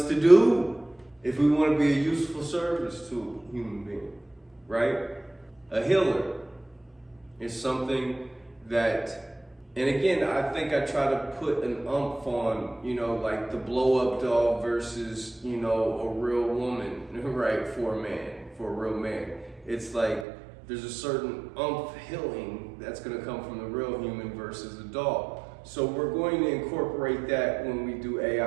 to do if we want to be a useful service to a human being, right? A healer is something that, and again, I think I try to put an umph on, like the blow-up doll versus, a real woman, right, for a real man. It's like there's a certain umph healing that's going to come from the real human versus the doll. So we're going to incorporate that when we do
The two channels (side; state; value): left; drops out; at 20.2 s